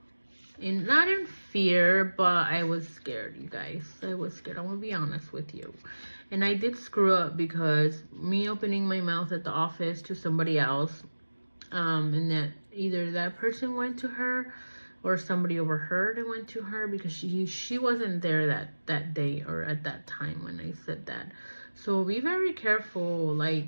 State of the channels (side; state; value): both; inverted; correlation -1.00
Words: not in fear, but I was scared, you guys. I was scared. I'm gonna be honest with you. And I did screw up because me opening my mouth at the office to somebody else, and that either that person went to her or somebody overheard and went to her, because she wasn't there that day or at that time when I said that. So be very careful, like,